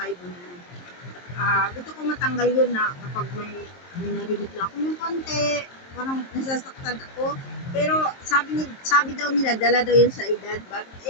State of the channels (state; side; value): late; right; 23 ms